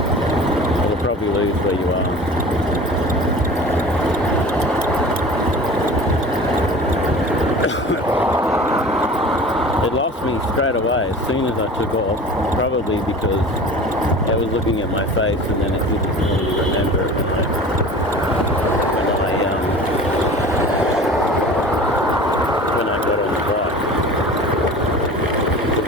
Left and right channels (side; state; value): both; normal; correlation 0.40